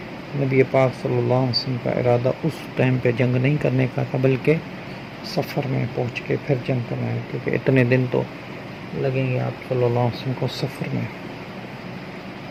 نبی پاک صلی اللہ علیہ وسلم کا ارادہ اس ٹائم پہ جنگ نہیں کرنے کا تھا، بلکہ سفر میں پہنچ کے پھر جنگ کرنا ہے، کیونکہ اتنے دن تو لگیں گے آپ صلی اللہ علیہ وسلم کو سفر میں،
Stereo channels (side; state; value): both; identical; correlation 1.00